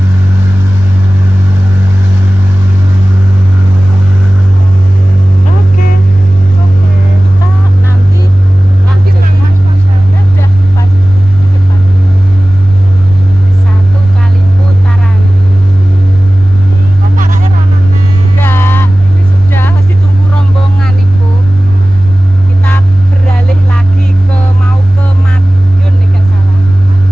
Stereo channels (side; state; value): both; normal; correlation 0.97